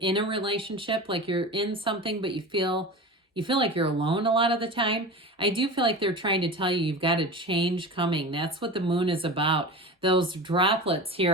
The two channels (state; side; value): normal; both; correlation 0.31